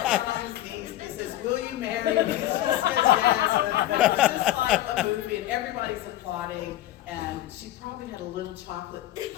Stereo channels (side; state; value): right; quieter; 14.2 dB